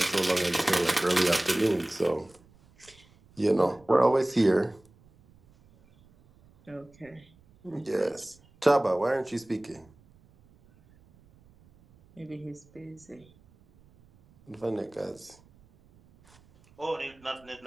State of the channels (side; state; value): right; noise; rumble, 29 dB below the sound